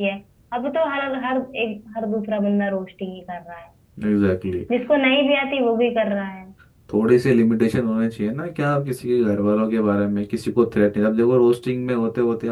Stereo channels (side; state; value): both; identical; correlation 1.00